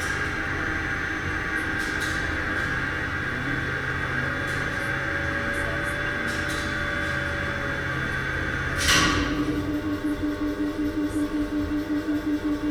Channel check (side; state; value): both; identical; correlation 1.00